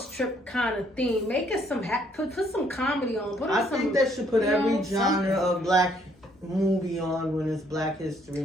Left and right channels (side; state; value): both; normal; correlation 0.67